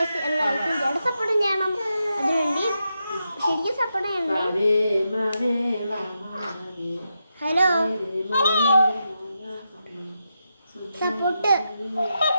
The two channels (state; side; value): inverted; both; correlation -0.86